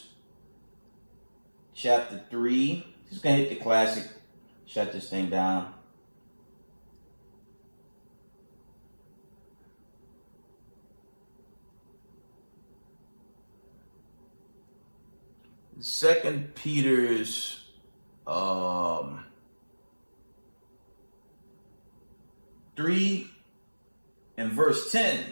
chapter 3. Just going to hit the classic. Shut this thing down. Second Peter's 3 and verse 10.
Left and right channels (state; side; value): inverted; both; correlation -1.00